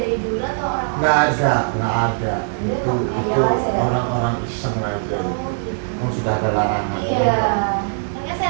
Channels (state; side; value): silent; left; 65 dB below the other